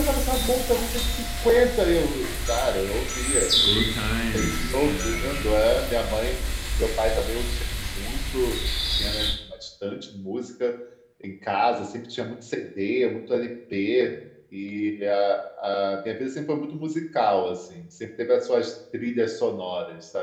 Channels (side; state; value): both; identical; correlation 1.00